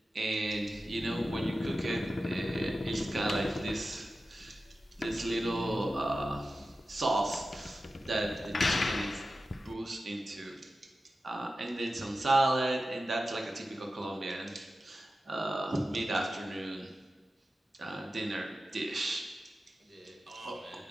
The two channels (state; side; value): normal; both; correlation 0.93